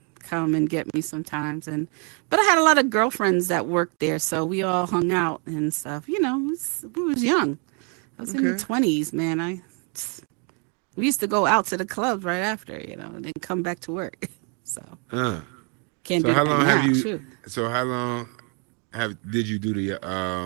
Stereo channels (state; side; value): quieter; left; 37.6 dB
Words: come and get me sometimes, but I had a lot of girlfriends that worked there, so we all hung out and stuff. We was young. I was in the Okay. 20s, man. We used to go out to the clubs right after, and then come back to work. So Uh. can't So do how that long have now. you? Shoot. So how long did you do the